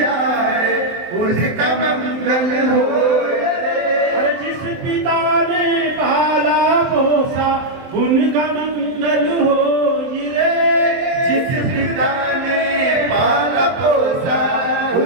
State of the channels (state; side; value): late; left; 23 ms